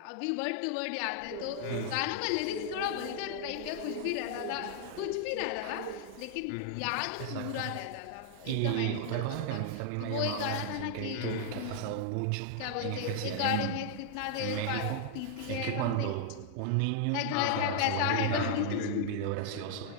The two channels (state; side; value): different; both; correlation -0.01